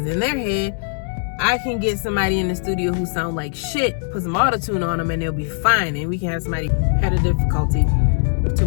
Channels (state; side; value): silent; right; digital silence